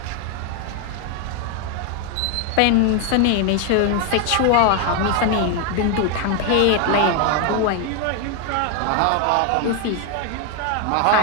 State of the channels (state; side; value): different; both; correlation 0.01